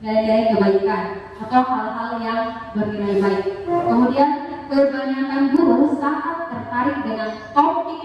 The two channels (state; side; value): identical; both; correlation 1.00